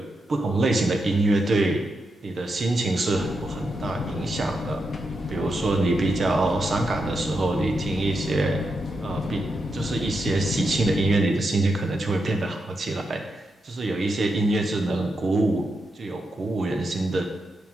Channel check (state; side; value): normal; both; correlation 0.85